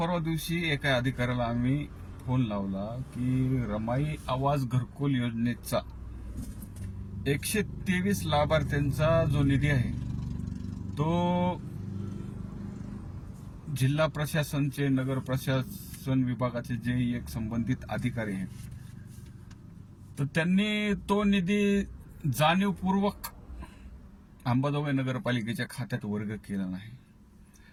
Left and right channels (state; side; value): identical; both; correlation 1.00